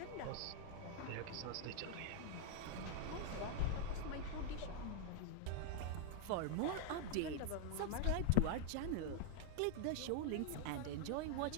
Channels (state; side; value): different; both; correlation -0.01